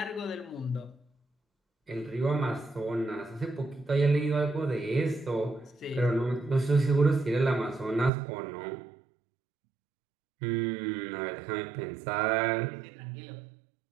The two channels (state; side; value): drops out; left; at 8.1 s